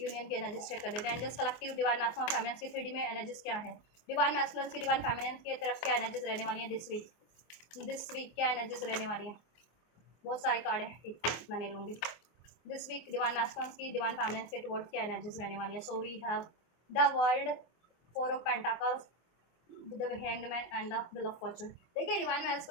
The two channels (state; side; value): late; right; 24 ms